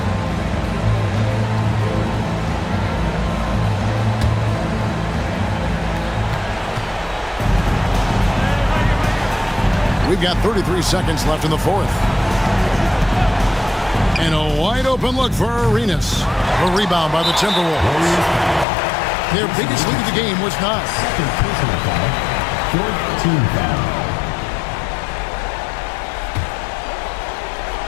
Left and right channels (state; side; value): drops out; right; at 18.7 s